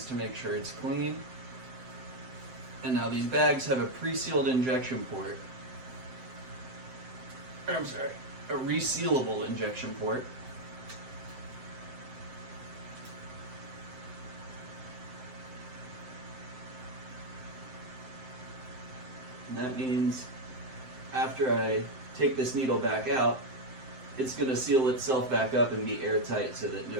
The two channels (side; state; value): left; late; 7.8 ms